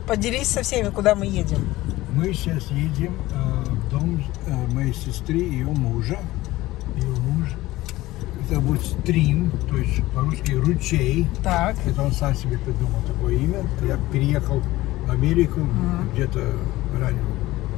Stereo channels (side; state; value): right; quieter; 17.8 dB